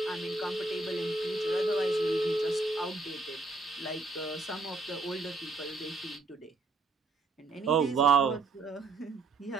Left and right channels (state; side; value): quieter; left; 3.4 dB